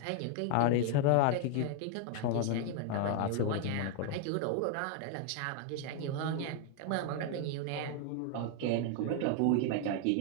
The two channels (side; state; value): both; different; correlation 0.01